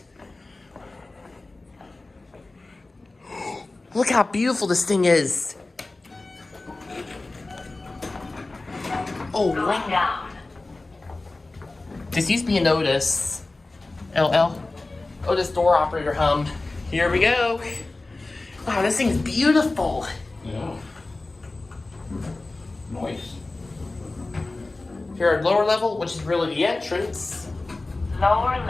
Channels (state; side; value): quieter; right; 3.2 dB